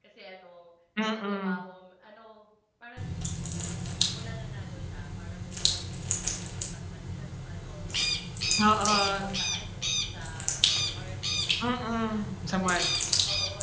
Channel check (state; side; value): identical; both; correlation 1.00